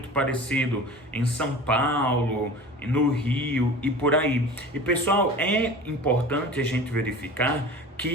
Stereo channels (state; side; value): normal; both; correlation 0.38